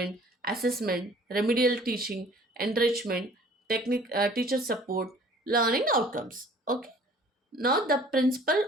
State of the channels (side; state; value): both; normal; correlation 0.52